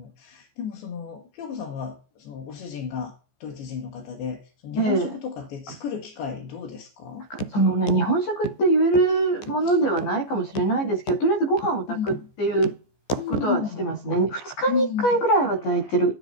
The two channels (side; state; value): right; late; 14 ms